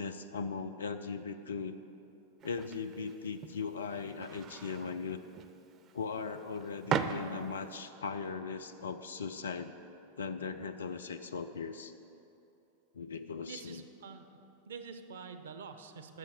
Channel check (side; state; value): both; inverted; correlation -0.33